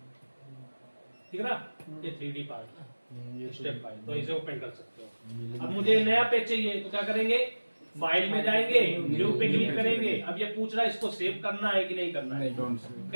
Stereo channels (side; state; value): both; inverted; correlation -1.00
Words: ठीक है ना, ये 3D पार्ट स्टेप फाइल, तो इसे ओपन कर सकते हो। अब मुझे नया पेज चाहिए तो क्या करेंगे, फाइल में जाएंगे, न्यू पे क्लिक करेंगे। अब ये पूछ रहा है इसको सेव करना है कि नहीं करना है।